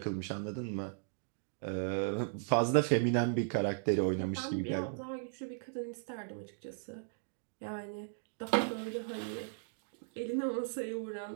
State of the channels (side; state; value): left; silent; digital silence